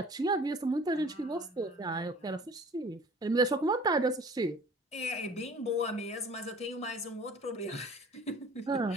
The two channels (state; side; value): normal; both; correlation 0.48